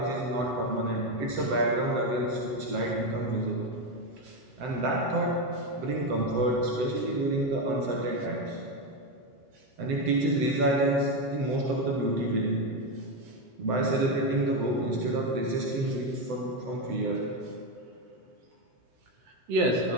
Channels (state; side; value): late; left; 7.8 ms